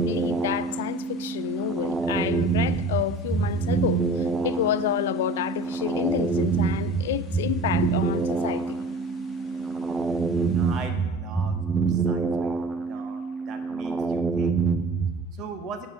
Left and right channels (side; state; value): both; normal; correlation 0.42